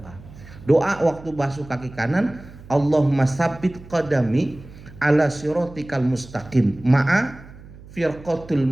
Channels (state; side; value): noise; right; hum, 19 dB below the sound